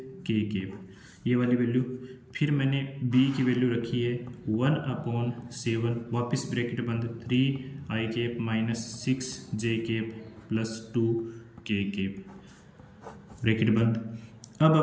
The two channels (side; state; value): both; identical; correlation 1.00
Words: cap, ये वाली वैल्यू। फिर मैंने b की वैल्यू रखी है 1/7 वापस ब्रैकेट बंद 3i cap -6j cap plus 2k cap. Bracket बंद। अब